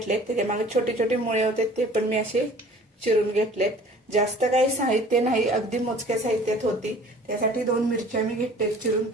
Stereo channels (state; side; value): normal; both; correlation 0.48